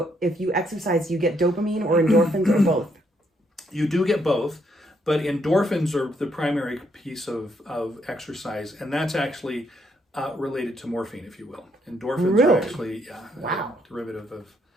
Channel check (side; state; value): both; normal; correlation 0.73